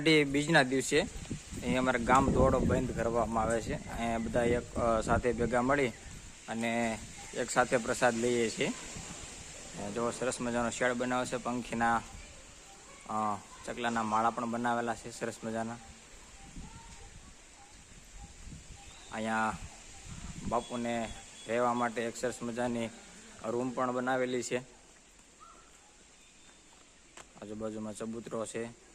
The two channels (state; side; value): identical; both; correlation 1.00